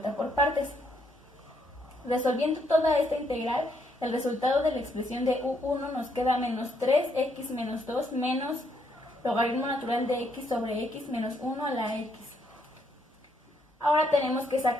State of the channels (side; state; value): both; normal; correlation 0.73